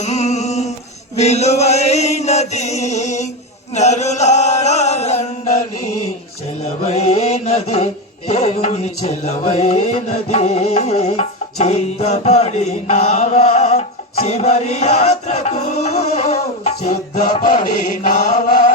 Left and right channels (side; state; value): both; normal; correlation 0.14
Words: విలువైనది, నరులారా రండని చెలవైనది, దేవుని చెలవైనది. సిద్ధపడినావా చివరి యాత్రకు, సిద్ధపడినావా